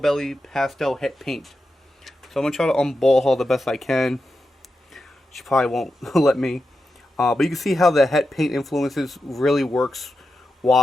pastel het paint. So I'm going to try to unball her the best I can. She probably won't let me. But you can see how the het paint influences really works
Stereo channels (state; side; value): normal; both; correlation 0.89